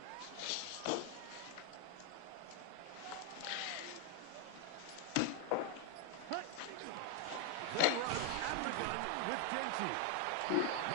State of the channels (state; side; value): different; both; correlation 0.01